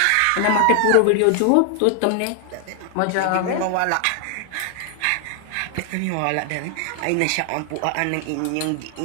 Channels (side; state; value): both; different; correlation 0.00